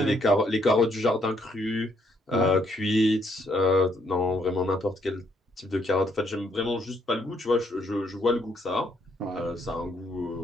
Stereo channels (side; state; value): both; normal; correlation 0.71